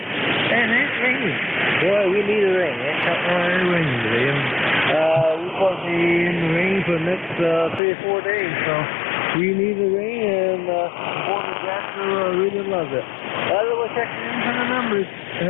it's raining. Boy, we need a rain. It's not really raining today. And we're supposed to be in the rain for the next 3 or 4 days. So we need the rain, and Porter Jackson really loves it. We'll check in for the numbers.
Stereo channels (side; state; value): right; drops out; at 7.8 s